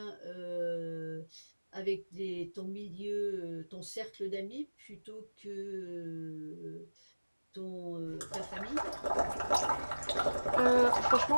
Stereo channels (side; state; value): both; inverted; correlation -1.00